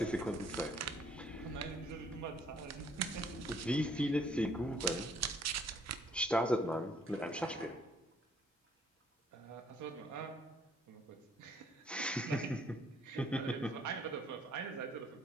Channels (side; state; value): both; normal; correlation 0.63